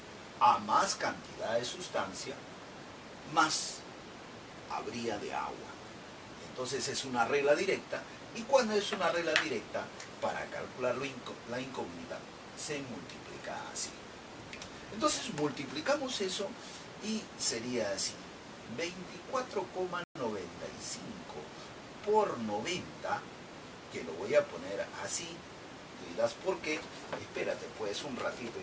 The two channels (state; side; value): identical; both; correlation 1.00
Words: A más cantidad de sustancia, más habría de agua. Entonces es una regla directa, y cuando es una regla directa, para calcular la incógnita, se multiplica así. Entonces multiplicamos eso y sería así. 24,95 por 90, que lo voy a poner así, tú dirás ¿por qué? Espérate pues un ratito